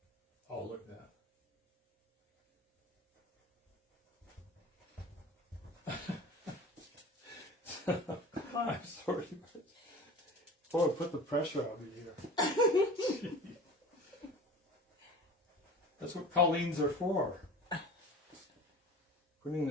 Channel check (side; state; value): both; normal; correlation 0.38